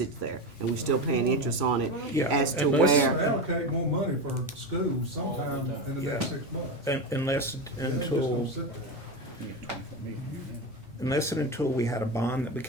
there, and we still paying interest on it Yeah, as to unless- where, Allocate more money for schools sometime in the next Yeah. 6 months. Unless It ain't just until gonna sit there. You get 24 million. unless and until we had a bond that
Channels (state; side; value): normal; both; correlation 0.18